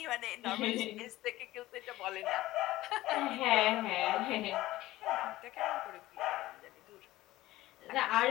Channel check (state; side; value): quieter; right; 16.7 dB